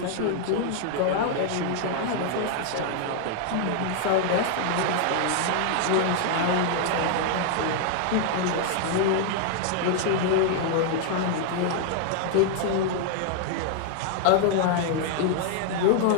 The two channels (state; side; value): different; both; correlation 0.00